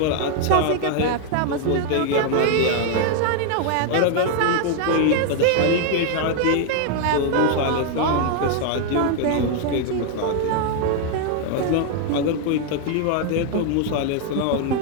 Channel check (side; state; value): both; different; correlation 0.00